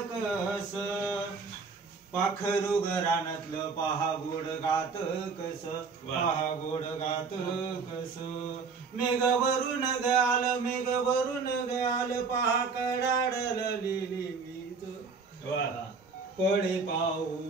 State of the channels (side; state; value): left; quieter; 4.9 dB